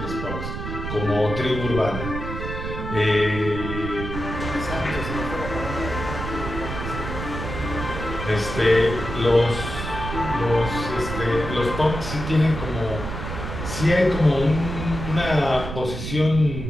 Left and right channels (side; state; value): right; noise; rumble, 6 dB below the sound